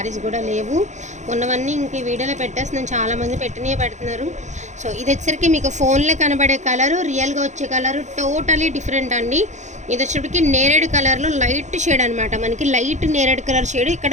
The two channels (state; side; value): late; left; 0.34 ms